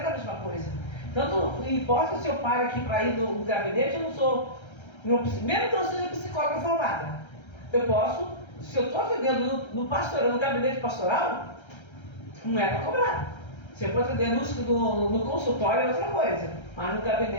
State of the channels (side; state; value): right; late; 1.3 ms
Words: a mesma coisa. Tanto não importa se eu paro aqui para ir no gabinete, eu não sou, mesmo que eu seja psicóloga formada, eu posso, se eu estou atendendo no gabinete pastoral, não é para cobrar. Se eu for atender no consultório é outra coisa, mas no